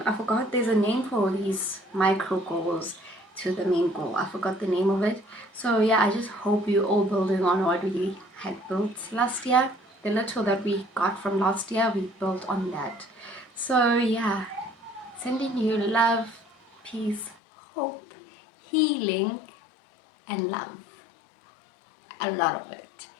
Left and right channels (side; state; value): right; drops out; at 17.4 s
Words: forgot there's a name for these micro goals to the main goal. I forgot the name of it. So yeah, I just hope you all building on what we had built last year. The little that we got from last year, we built on that. So yeah, sending you love, peace, hope, healing, and love. A lot of it.